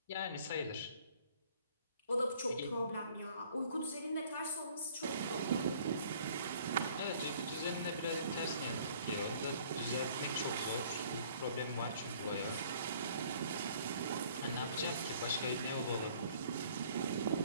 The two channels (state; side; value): inverted; both; correlation -0.56